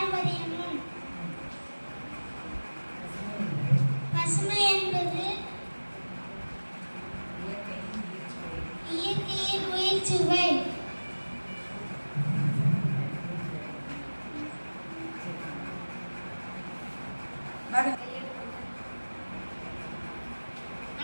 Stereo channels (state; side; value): inverted; both; correlation -1.00